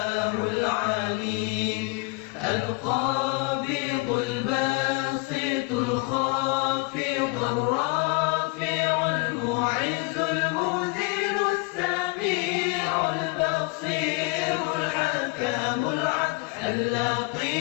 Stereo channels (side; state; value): right; quieter; 27.6 dB